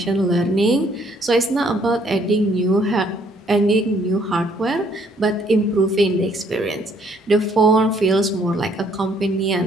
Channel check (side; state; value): both; normal; correlation 0.65